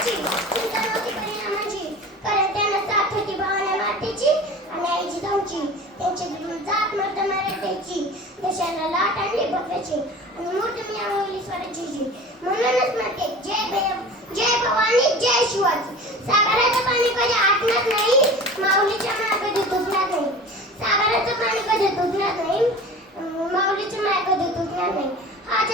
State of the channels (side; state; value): both; normal; correlation 0.38